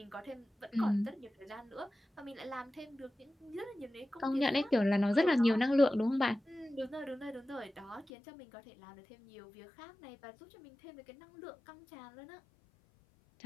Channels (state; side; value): drops out; right; at 8.1 s